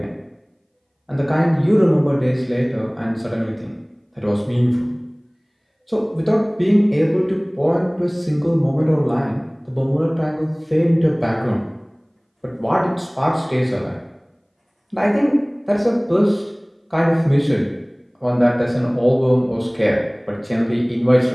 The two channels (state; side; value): identical; both; correlation 1.00